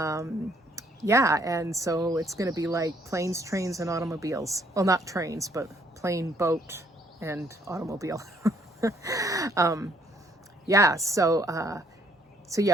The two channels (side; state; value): both; normal; correlation 0.66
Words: Yeah, and so it's going to be like planes, trains, and automobiles. Well, not trains, but plane, boat, and automobile. Yeah, so